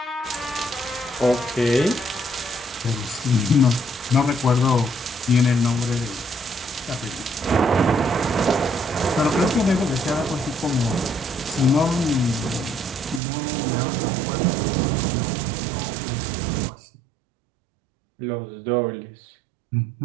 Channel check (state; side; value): drops out; left; at 13.2 s